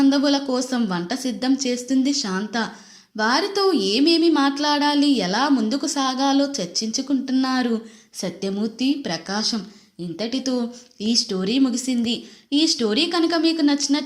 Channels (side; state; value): both; identical; correlation 1.00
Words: కోసం వంట సిద్ధం చేస్తుంది శాంత. వారితో ఏమేమి మాట్లాడాలి, ఎలా ముందుకు సాగాలో చర్చించుకుంటున్నారు సత్యమూర్తి, ప్రకాశం. ఇంతటితో ఈ స్టోరీ ముగిసింది. ఈ స్టోరీ కనుక మీకు